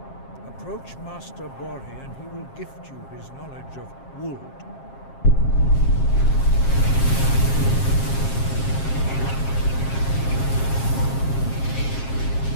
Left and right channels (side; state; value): right; late; 7.5 ms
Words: Approach Master Bori and he will gift you his knowledge of Wuld.